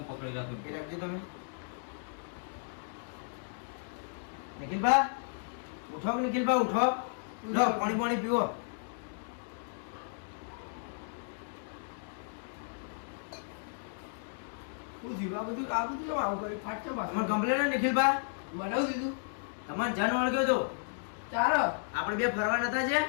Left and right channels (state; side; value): silent; right; digital silence